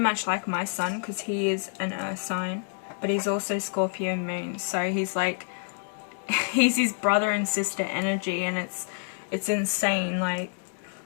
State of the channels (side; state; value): right; silent; 59 dB below the other